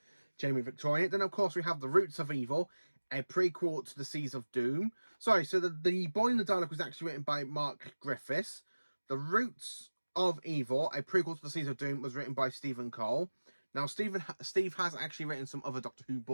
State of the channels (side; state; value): both; inverted; correlation -1.00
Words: Jamie and Victoria. Then of course we have The Roots of Evil, a prequel to The Seas of Doom. Sorry, so the Boy and the Dalek was actually written by Mark Griffiths. The Roots of Evil, a prequel to The Seas of Doom, was written by Stephen Cole. Now, Steve has actually written some other Doctor Who